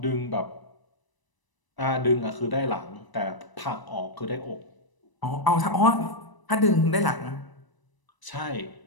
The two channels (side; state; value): right; late; 1.0 ms